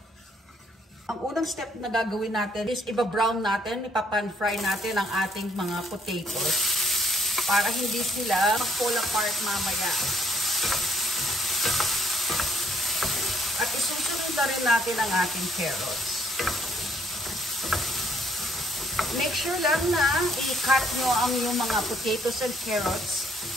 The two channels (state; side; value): normal; both; correlation 0.67